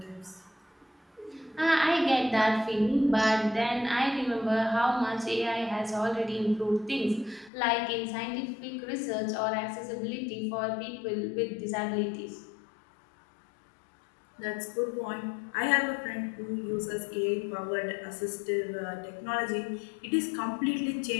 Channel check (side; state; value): right; drops out; at 7.5 s